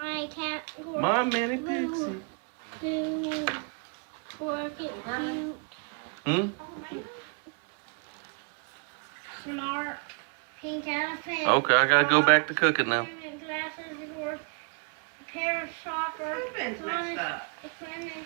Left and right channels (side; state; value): left; quieter; 38.7 dB